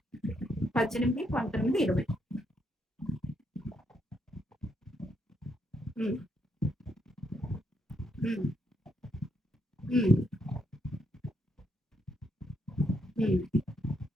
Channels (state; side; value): normal; both; correlation 0.76